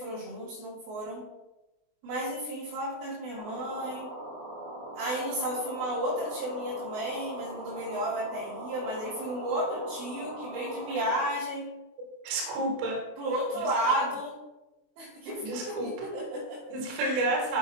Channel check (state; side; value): late; left; 24 ms